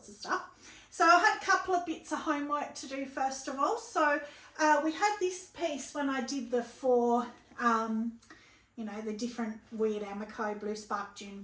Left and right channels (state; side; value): identical; both; correlation 1.00